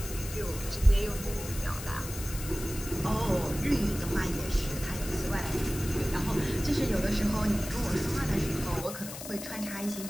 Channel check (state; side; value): noise; left; hiss, 10 dB below the sound